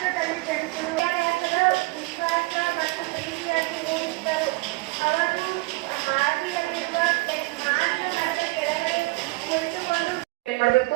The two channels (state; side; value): quieter; left; 24.0 dB